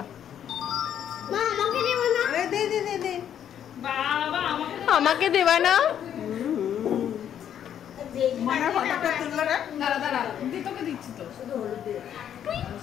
আমাকে দেবা না?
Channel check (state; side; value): quieter; right; 9.6 dB